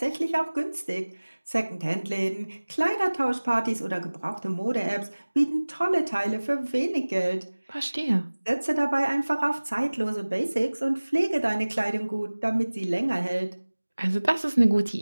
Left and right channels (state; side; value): inverted; both; correlation -1.00